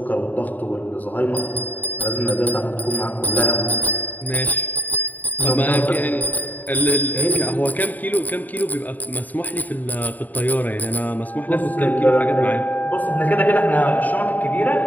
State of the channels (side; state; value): right; late; 0.083 ms